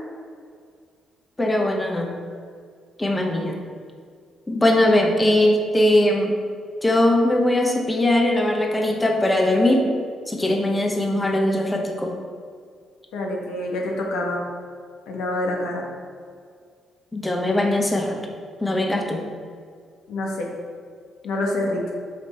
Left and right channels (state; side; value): normal; both; correlation 0.86